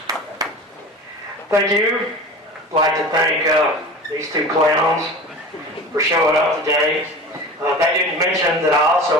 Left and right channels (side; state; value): both; normal; correlation 0.35